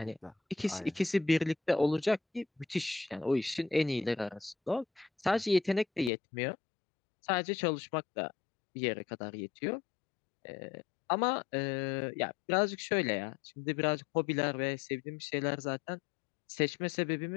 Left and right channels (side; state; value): right; drops out; at 6.1 s